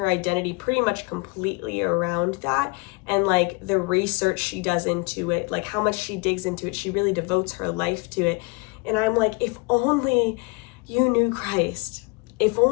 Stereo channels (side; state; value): right; quieter; 28.2 dB